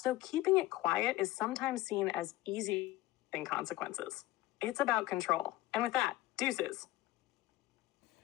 keeping it quiet is sometimes seen as easy than consequences. It's about control. And with that, deuces.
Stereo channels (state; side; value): quieter; right; 16.9 dB